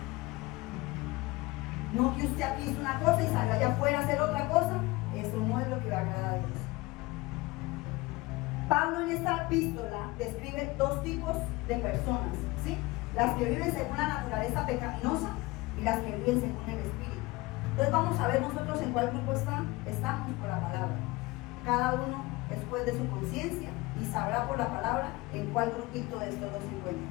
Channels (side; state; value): right; quieter; 21.9 dB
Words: No que usted aquí hizo una cosa y salga allá afuera a hacer otra cosa. Eso no es lo que va a agradar a Dios. Pablo en esta epístola describe dos tipos de personas, ¿sí? Las que viven según la naturaleza pecaminosa y las que viven según el Espíritu. Entonces vamos a ver nosotros en cuál grupo estamos por la palabra. Cada uno después de su conciencia y sabrá por la palabra en cuál grupito de estos dos se encuentra.